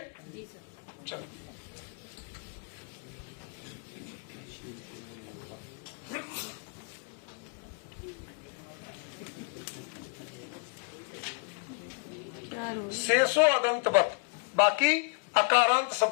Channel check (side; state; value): right; quieter; 38.2 dB